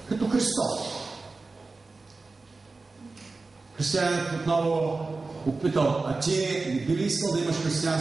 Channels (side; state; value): left; quieter; 3.7 dB